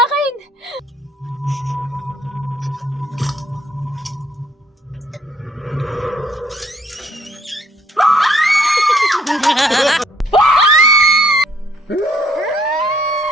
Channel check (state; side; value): normal; both; correlation 0.65